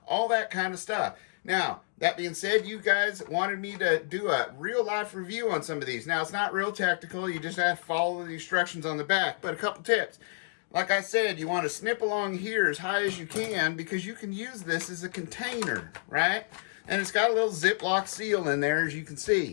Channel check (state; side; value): silent; right; digital silence